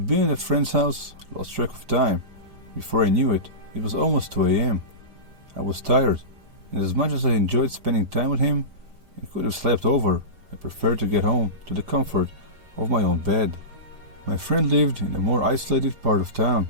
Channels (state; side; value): late; left; 4.9 ms